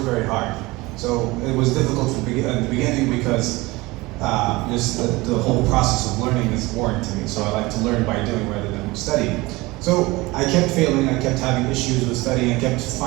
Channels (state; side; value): quieter; left; 21.8 dB